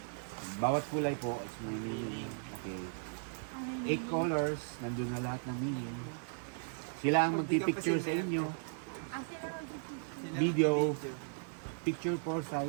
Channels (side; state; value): left; silent; digital silence